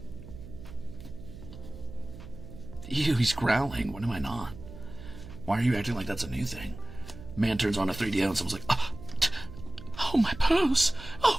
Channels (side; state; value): right; noise; hum, 14 dB below the sound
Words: Ew, he's growling. What am I not? Why are you acting like that's a new thing? Man turns on a 3D and someone's like, oh, my purse.